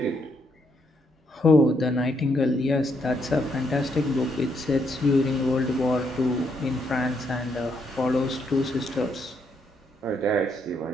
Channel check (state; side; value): normal; both; correlation 0.76